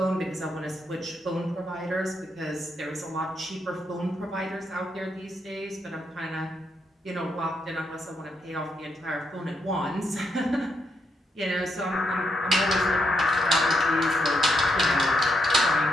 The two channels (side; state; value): both; normal; correlation 0.79